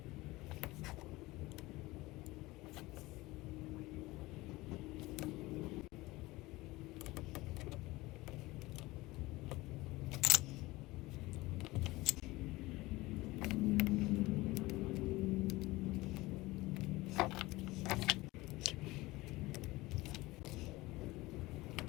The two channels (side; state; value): right; quieter; 20.2 dB